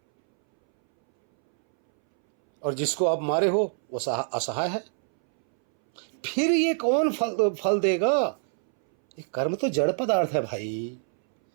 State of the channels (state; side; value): silent; left; 62 dB below the other